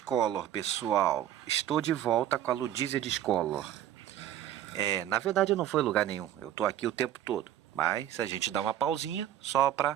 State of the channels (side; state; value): left; quieter; 11.6 dB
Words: pessoal. Estou de volta com a Ludícia Discolor. Na verdade não foi lugar nenhum, eu tô aqui o tempo todo. Mas a gente dá uma pausinha só para